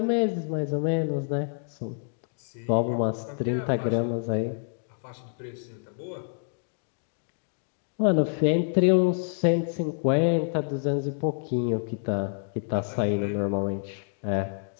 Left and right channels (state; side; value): silent; right; digital silence